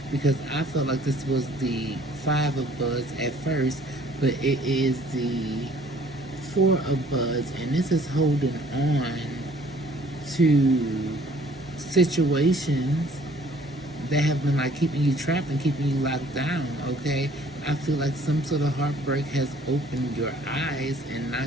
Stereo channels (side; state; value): both; normal; correlation 0.57